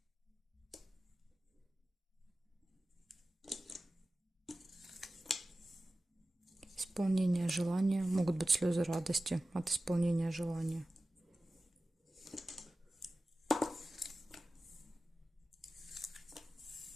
Исполнение желания. Могут быть слезы радости от исполнения желания.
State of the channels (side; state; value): both; normal; correlation 0.95